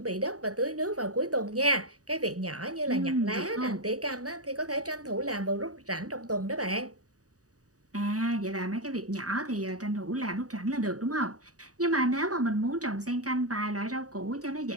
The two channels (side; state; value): left; late; 0.67 ms